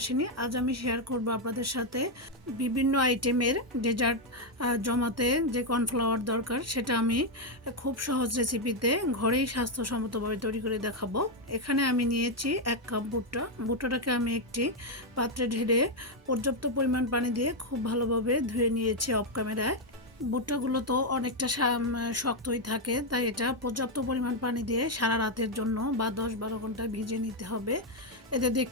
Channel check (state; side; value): normal; both; correlation 0.02